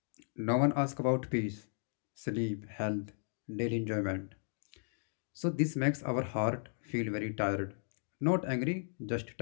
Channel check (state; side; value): silent; right; digital silence